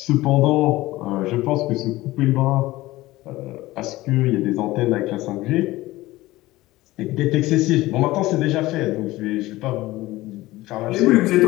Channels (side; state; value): right; quieter; 18.2 dB